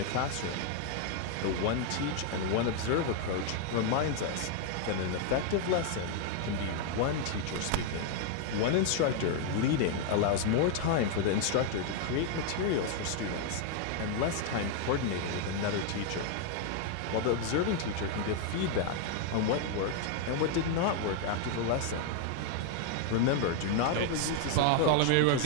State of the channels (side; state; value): both; different; correlation 0.00